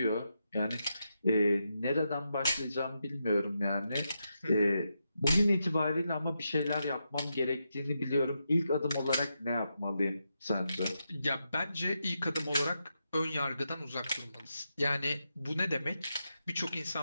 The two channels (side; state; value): both; inverted; correlation -0.85